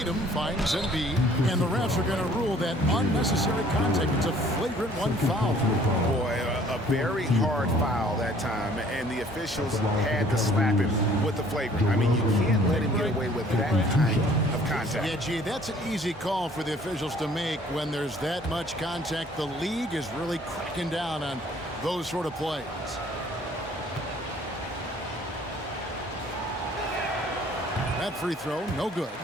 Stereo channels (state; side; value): normal; both; correlation 0.56